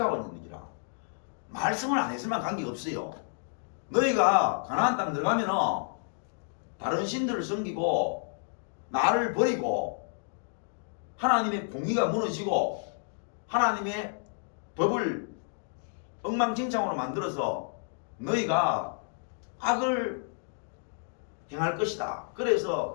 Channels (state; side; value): silent; right; digital silence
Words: 있는 얘기라. 말씀을 안 했으면 관계없어요. 너희가 가나안 땅 들어가면은 다른 신들을 섬기고 나를 버리고 하나님의 공의가 무너지고 하나님의 법을 엉망진창으로 만들어서 너희가 악을 행할 것이다.